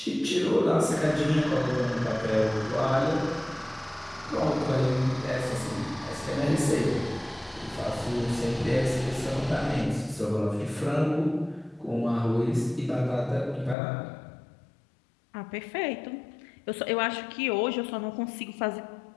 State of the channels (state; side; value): drops out; right; at 13.8 s